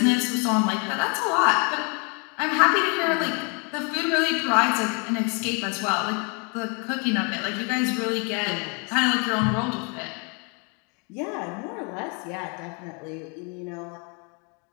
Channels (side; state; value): right; quieter; 35.0 dB